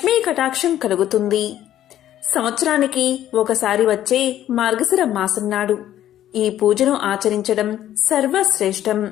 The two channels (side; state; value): right; quieter; 12.1 dB